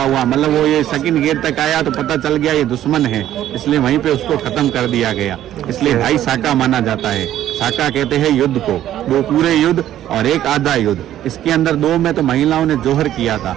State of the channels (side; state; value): left; quieter; 12.2 dB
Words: हुआ, मतलब वो ये सेकंड गेट तक आया तो पता चल गया ये दुश्मन है, इसलिए वहीं पे उसको खत्म कर दिया गया, इसलिए 2.5 साका माना जाता है। साका कहते हैं युद्ध को, 2 पूरे युद्ध और एक आधा युद्ध। इसके अंदर 2 में तो महिलाओं ने जोहर किया था